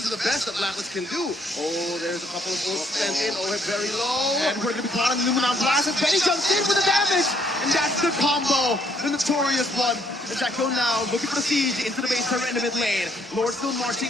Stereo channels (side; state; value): both; normal; correlation 0.68